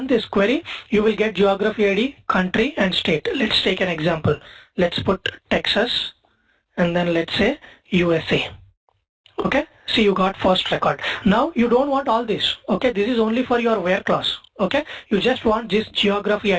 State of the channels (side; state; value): both; identical; correlation 1.00